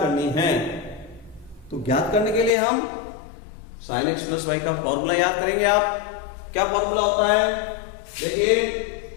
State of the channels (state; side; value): drops out; right; at 2.5 s